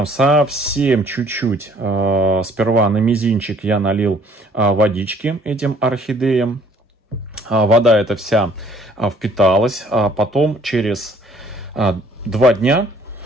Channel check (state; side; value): normal; both; correlation 0.59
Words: совсем чуть-чуть, сперва на мизинчик я налил водички этим орхидеям. Вода эта вся впиталась. Потом через 2 дня